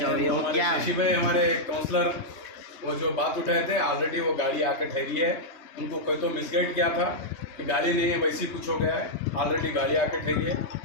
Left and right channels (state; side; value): late; right; 3.3 ms